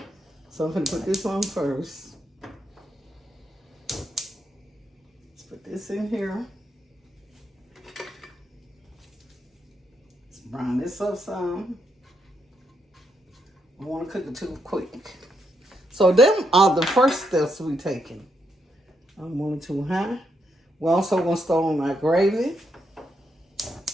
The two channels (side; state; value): both; normal; correlation 0.79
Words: So I'm gonna put this on first. Let's put this in here. Let's brown this up some. I don't want to cook it too quick. So them are the first steps we taking. I'm going too high. We're also gonna start on my gravy.